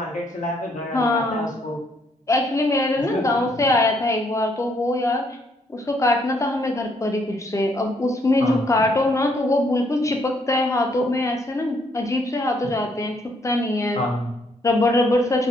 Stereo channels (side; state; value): both; normal; correlation 0.70